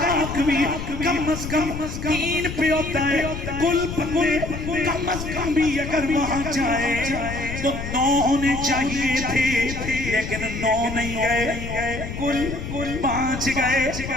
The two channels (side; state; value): left; noise; rumble, 7 dB below the sound